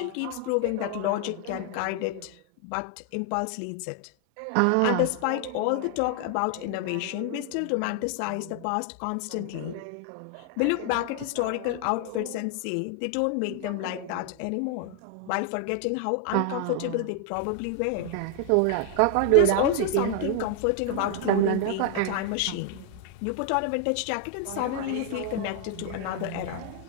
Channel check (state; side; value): different; both; correlation 0.00